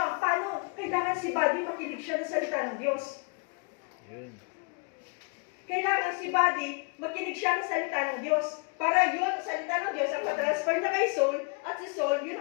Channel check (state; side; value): quieter; right; 33.5 dB